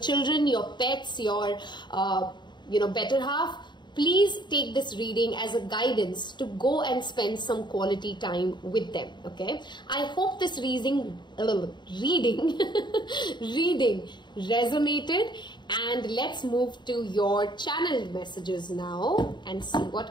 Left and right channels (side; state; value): right; late; 0.22 ms